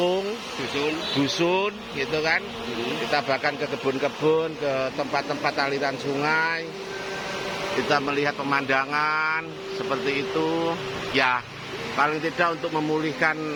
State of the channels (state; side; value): identical; both; correlation 1.00